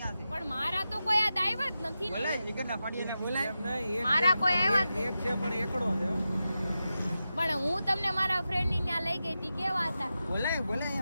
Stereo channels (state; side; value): inverted; both; correlation -0.91